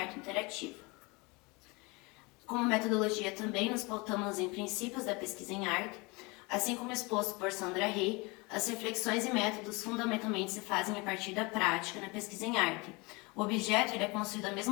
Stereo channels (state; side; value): quieter; right; 26.7 dB